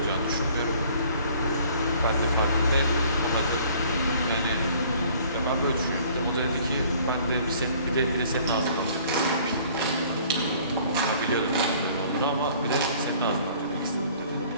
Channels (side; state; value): both; inverted; correlation -0.55